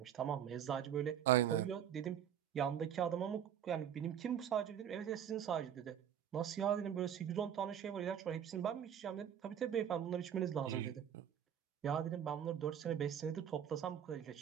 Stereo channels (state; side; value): quieter; left; 9.3 dB